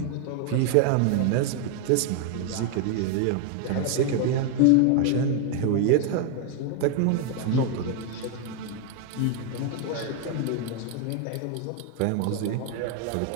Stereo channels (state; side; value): different; both; correlation 0.00